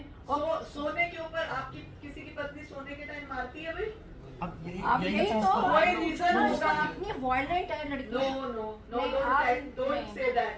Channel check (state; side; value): identical; both; correlation 1.00